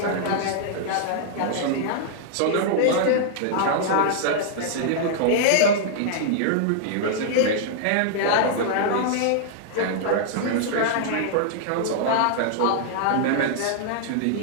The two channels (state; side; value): different; both; correlation -0.01